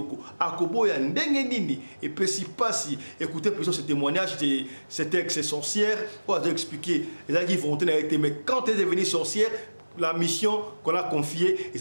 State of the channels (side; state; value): both; inverted; correlation -1.00